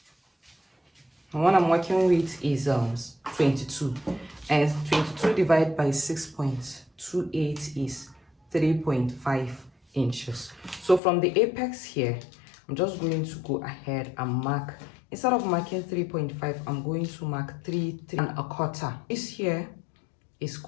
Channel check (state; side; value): drops out; right; at 11.0 s